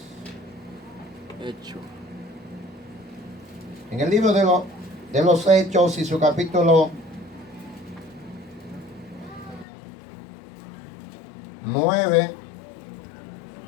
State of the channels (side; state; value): right; drops out; at 9.7 s